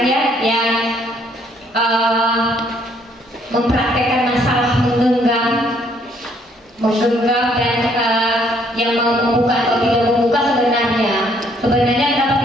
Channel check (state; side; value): normal; both; correlation 0.66